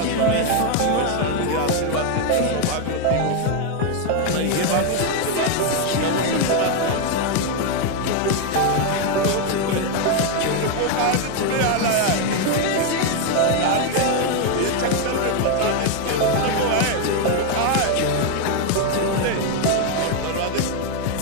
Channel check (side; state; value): both; different; correlation 0.01